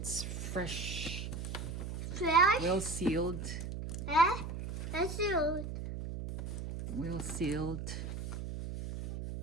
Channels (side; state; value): right; noise; hum, 5 dB below the sound